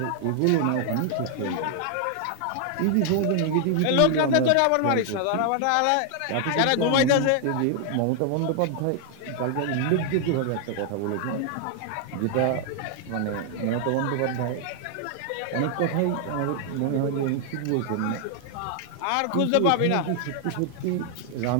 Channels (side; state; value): both; different; correlation 0.00